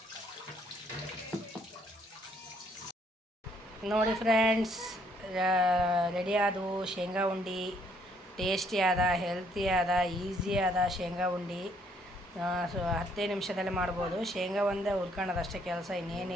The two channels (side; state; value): both; normal; correlation 0.67